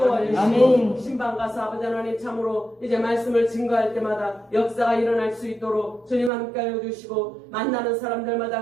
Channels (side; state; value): left; drops out; at 6.3 s